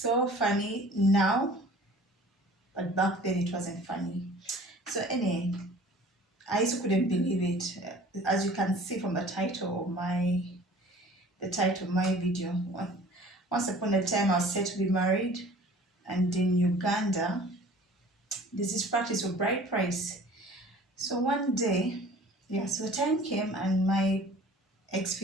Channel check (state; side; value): normal; both; correlation 0.47